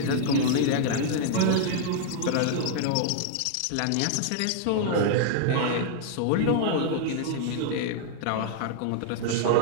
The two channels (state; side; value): different; both; correlation -0.01